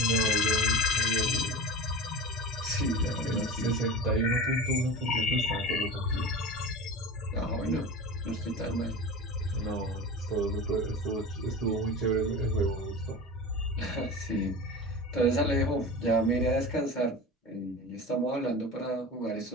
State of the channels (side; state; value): both; normal; correlation 0.31